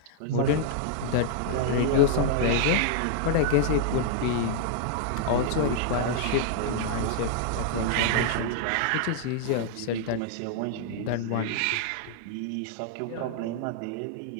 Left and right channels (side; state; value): both; different; correlation -0.01